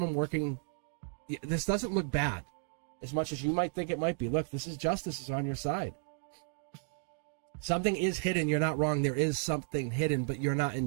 working? This doesn't look bad, as much as you might think it might be. Look, this is justice is on your side. Something is hidden. You're not wrong. There is something hidden, but you're not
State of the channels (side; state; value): left; silent; digital silence